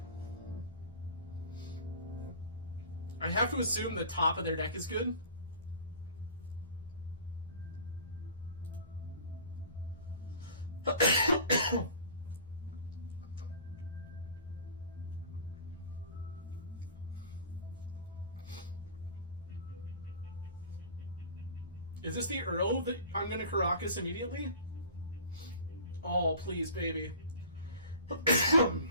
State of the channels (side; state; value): both; inverted; correlation -0.41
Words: I have to assume the top of their deck is good. Is this the Earl that I'm going to Caracas immediately? Oh, please, baby.